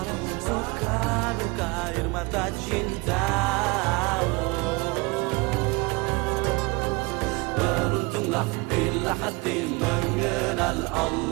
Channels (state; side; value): quieter; left; 25.9 dB